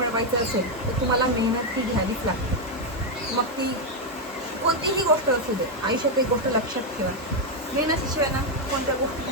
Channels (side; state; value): both; normal; correlation 0.02